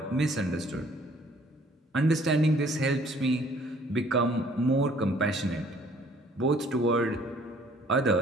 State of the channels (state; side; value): normal; both; correlation 0.58